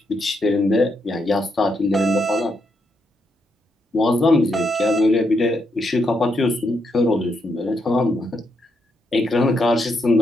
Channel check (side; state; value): both; normal; correlation 0.80